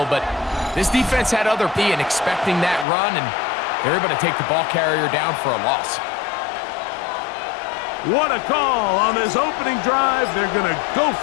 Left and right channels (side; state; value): right; drops out; at 2.9 s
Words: But this defense had other P and expecting that run, and they're able to take the ball carrier down for a loss. What a call on this opening drive. They're going to go